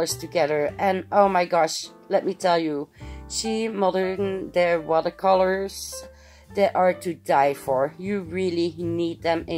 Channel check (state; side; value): identical; both; correlation 1.00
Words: together. And oh my gosh, let me tell you, Shemodern, their watercolors, they are to die for. You really need them